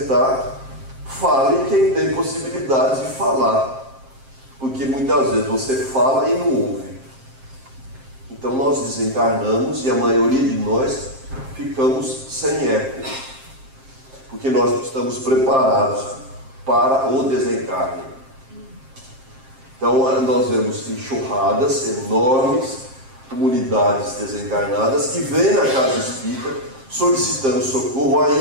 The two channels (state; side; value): late; left; 7.5 ms